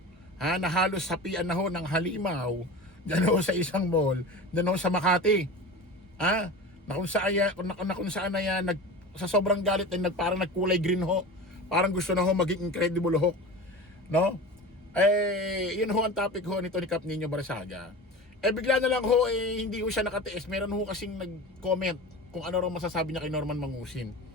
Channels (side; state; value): both; normal; correlation 0.32